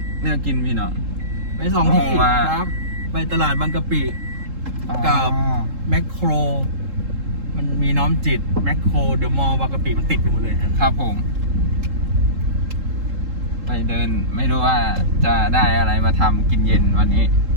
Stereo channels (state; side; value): late; left; 3.7 ms